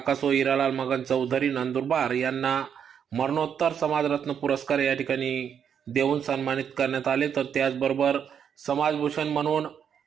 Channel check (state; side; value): quieter; left; 8.0 dB